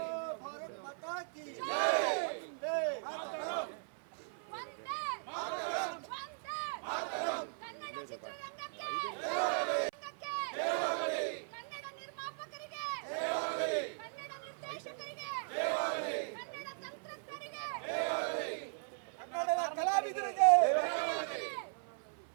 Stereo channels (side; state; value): left; silent; 52 dB below the other